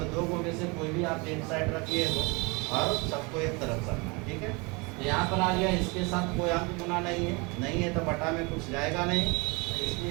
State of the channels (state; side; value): quieter; left; 28.2 dB